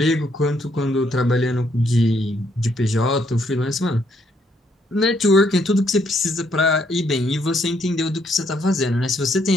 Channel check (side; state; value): both; normal; correlation 0.71